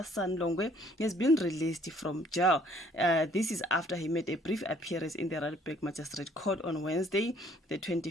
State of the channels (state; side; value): normal; both; correlation 0.60